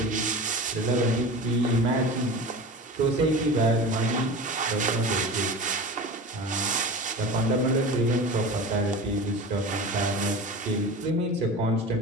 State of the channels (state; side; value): normal; both; correlation 0.33